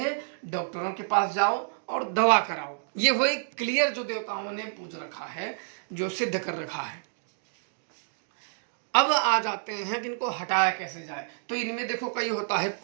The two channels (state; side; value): silent; left; digital silence